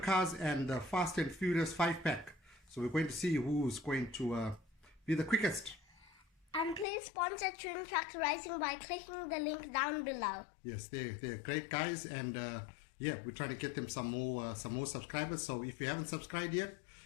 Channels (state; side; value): drops out; right; at 6.9 s